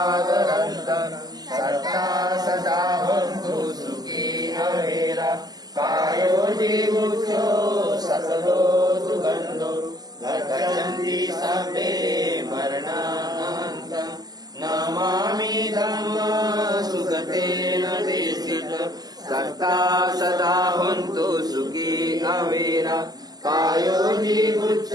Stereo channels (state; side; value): late; left; 0.19 ms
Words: सत्ता सदा भवन्तु सुखी अवेरा कायो जीवुषो सकलो सुगन्धो गच्छन्ति सर्वे मरणान्तं नमामि धम्म सुगतेन देशित सत्ता सदा भवन्तु सुखी अवेरा कायो